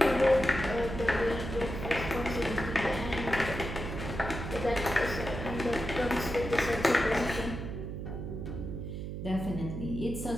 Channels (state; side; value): noise; right; hum, 6 dB below the sound